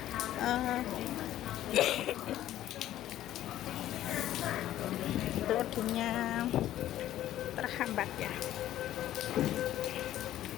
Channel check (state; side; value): quieter; right; 13.1 dB